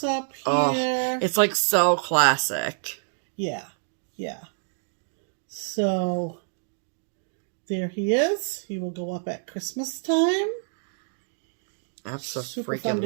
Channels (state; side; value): silent; left; digital silence